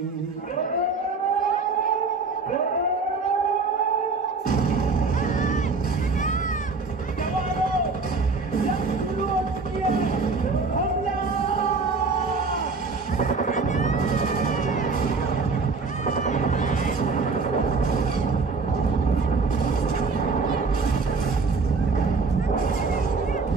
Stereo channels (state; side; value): quieter; left; 4.3 dB